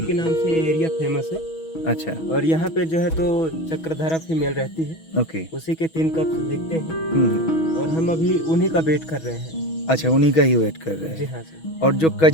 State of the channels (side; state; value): right; late; 6.2 ms